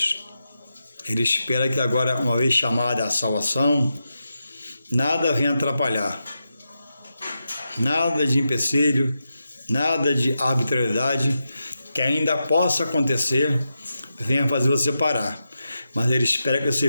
Ele espera que agora, uma vez chamada a salvação, nada venha atrapalhar. Nada de empecilho, nada de arbitrariedade que ainda possa acontecer, venha fazer você parar. Mas Ele espera que você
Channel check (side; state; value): both; inverted; correlation -0.88